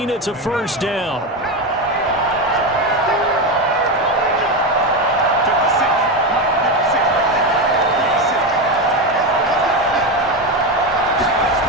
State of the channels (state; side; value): normal; both; correlation 0.14